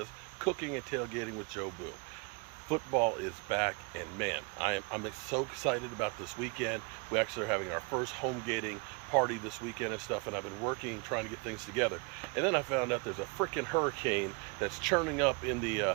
cooking and tailgating with Joe Boo. Football is back, and man, I'm so excited about this weekend. We actually are having our first Homegating party this weekend and stuff, and I've been working, trying to get things together. And then I found out there's a freaking hurricane that's churning up in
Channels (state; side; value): quieter; left; 31.3 dB